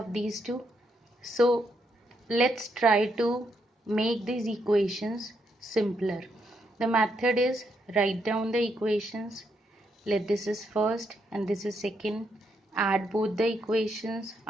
these two. So let's try to make these equations simpler. The method is write down the equations. Let this is first and this is second. Add both the equations.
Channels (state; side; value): normal; both; correlation 0.78